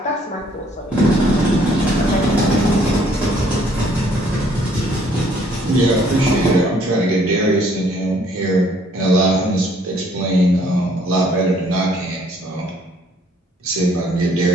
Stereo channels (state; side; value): normal; both; correlation 0.62